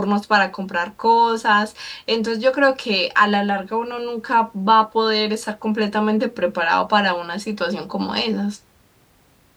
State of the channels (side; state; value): both; identical; correlation 1.00